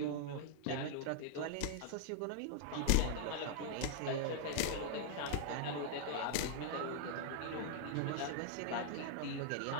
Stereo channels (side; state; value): both; different; correlation -0.01